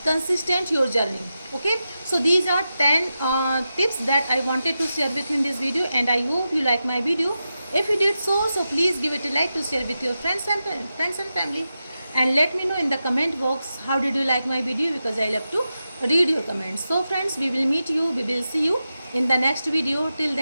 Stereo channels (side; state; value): both; inverted; correlation -0.90